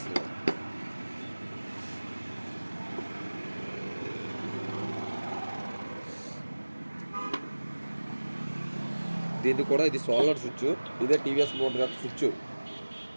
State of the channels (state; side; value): inverted; both; correlation -1.00